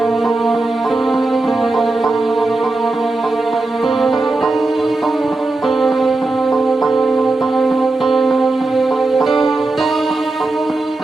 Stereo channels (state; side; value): quieter; left; 3.1 dB